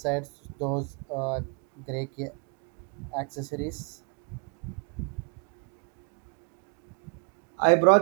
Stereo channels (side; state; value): left; quieter; 38.9 dB